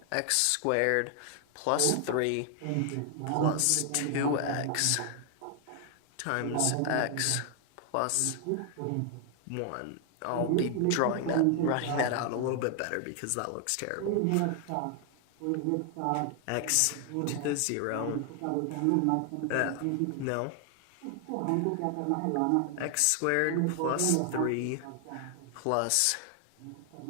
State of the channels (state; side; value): different; both; correlation 0.00